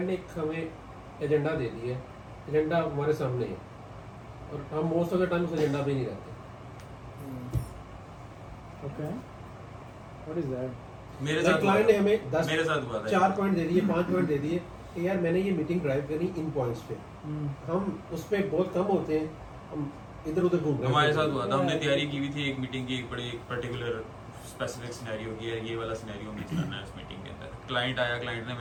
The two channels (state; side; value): identical; both; correlation 1.00